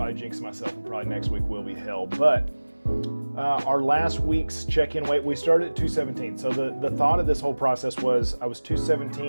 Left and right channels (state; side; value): inverted; both; correlation -1.00